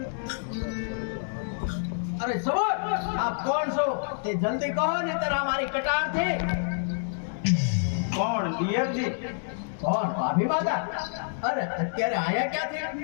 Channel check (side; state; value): right; silent; digital silence